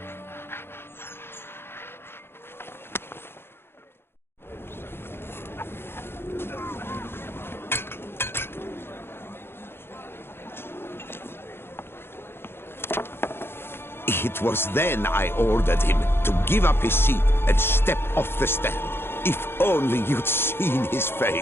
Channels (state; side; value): late; right; 0.11 ms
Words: It was then I ordered him to give up his seat and step off the stand. If only you'd seen his